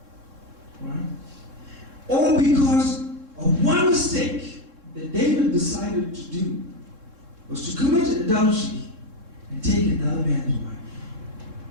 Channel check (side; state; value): left; late; 3.7 ms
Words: Right? All because of one mistake that David decided to do was to commit adultery and take another man's wife.